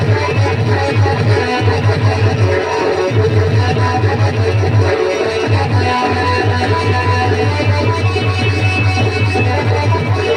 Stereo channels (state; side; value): identical; both; correlation 1.00